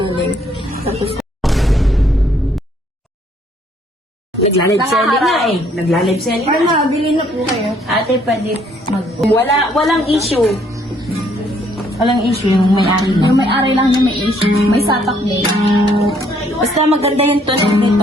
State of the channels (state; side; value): normal; both; correlation 0.65